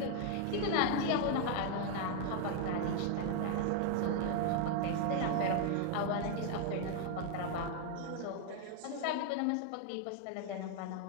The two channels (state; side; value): different; both; correlation 0.00